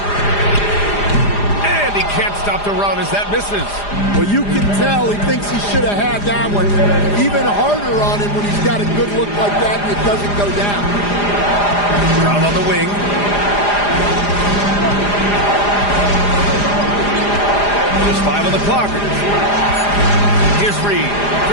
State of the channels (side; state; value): right; late; 4.9 ms